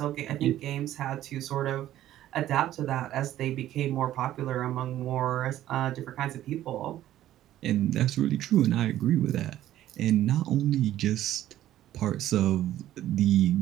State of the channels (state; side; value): quieter; left; 13.1 dB